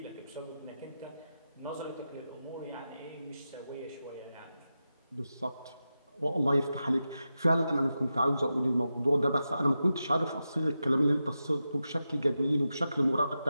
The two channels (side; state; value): both; inverted; correlation -0.91